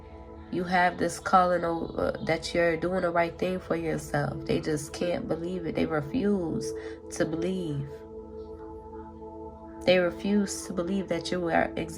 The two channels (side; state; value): both; identical; correlation 1.00